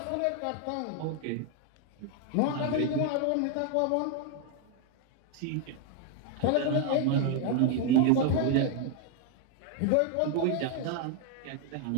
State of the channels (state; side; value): different; both; correlation 0.01